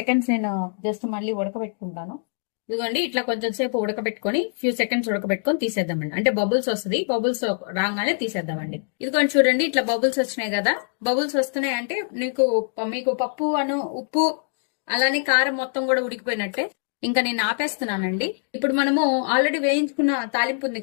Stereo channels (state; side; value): silent; right; digital silence